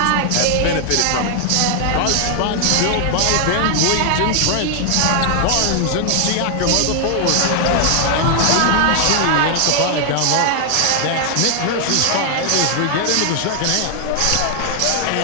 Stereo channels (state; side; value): different; both; correlation 0.00